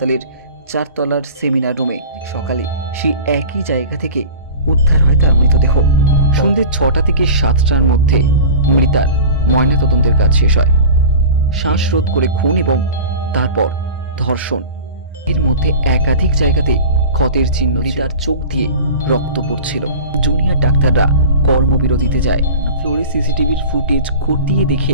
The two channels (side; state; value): both; inverted; correlation -0.35